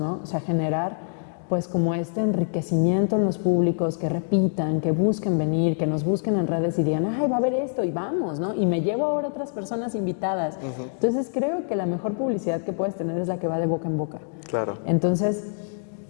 O sea, generar pues como este enriquecimiento en los públicos, que repitan, que busquen venir, que nos busquen en redes y digan, va a haber esto y vamos, ¿no? Y me llevo ahora otras personas invitadas. Entonces, creo que la mejor publicidad que puedes tener es la que va de boca en boca. Claro. Entonces,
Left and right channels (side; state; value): right; silent; digital silence